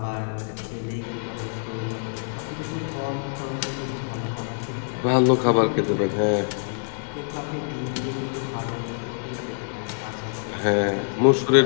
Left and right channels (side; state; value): right; silent; digital silence